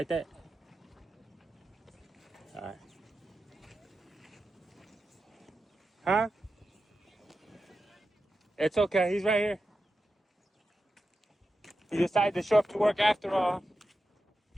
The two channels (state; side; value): normal; both; correlation 0.90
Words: that? All right. Huh? It's okay. He's right here. He decided to show up to work after all.